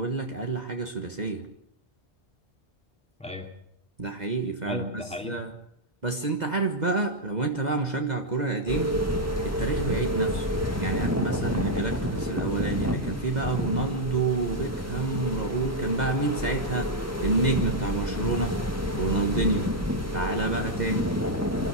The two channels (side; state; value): both; normal; correlation -0.02